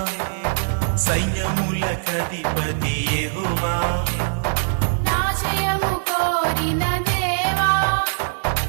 సైన్యములకధిపతి యెహోవా నా జయము కోరిన దేవా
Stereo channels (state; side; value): silent; left; digital silence